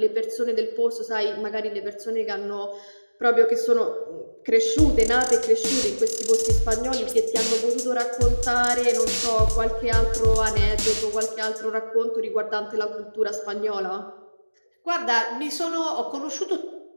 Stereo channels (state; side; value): inverted; both; correlation -1.00